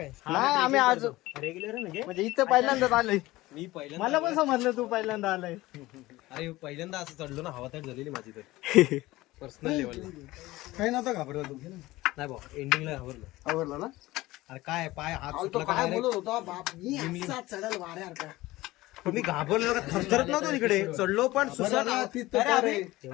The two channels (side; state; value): right; quieter; 18.5 dB